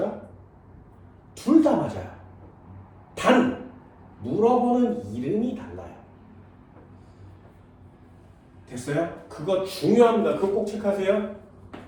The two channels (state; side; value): identical; both; correlation 1.00